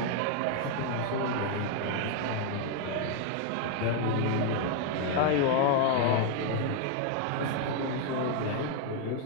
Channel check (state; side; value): different; both; correlation 0.00